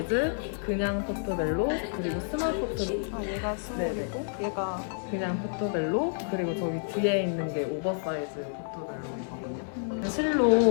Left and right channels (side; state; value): right; silent; digital silence